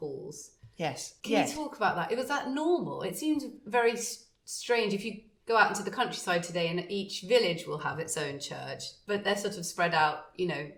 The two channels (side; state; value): both; identical; correlation 1.00